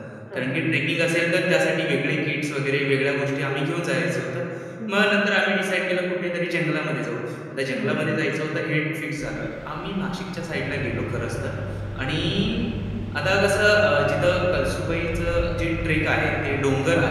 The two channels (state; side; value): identical; both; correlation 1.00